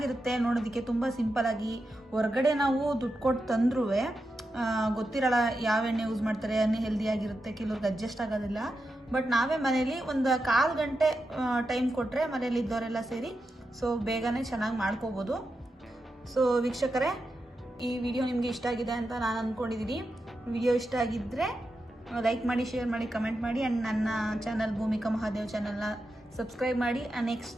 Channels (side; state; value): both; normal; correlation 0.88